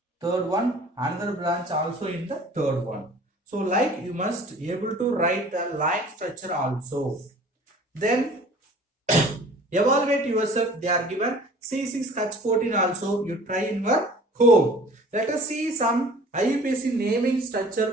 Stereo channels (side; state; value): both; normal; correlation 0.47